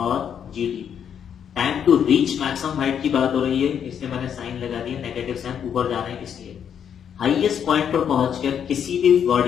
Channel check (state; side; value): quieter; right; 8.3 dB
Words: G T. Time to reach maximum height की बात हो रही है, इसलिए मैंने साइन लगा दिया, नेगेटिव साइन, ऊपर जाना है इसलिए। हाईएस्ट पॉइंट पर पहुंचकर किसी भी